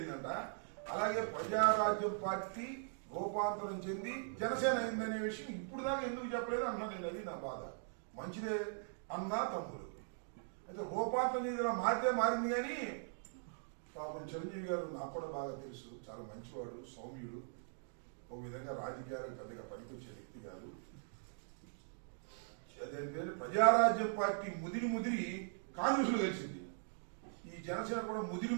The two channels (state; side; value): silent; left; digital silence